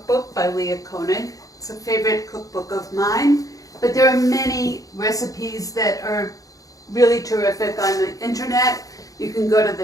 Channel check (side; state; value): right; late; 0.17 ms